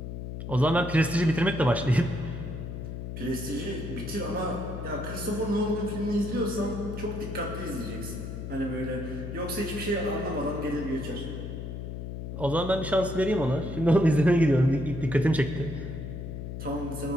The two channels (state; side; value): noise; left; hum, 7 dB below the sound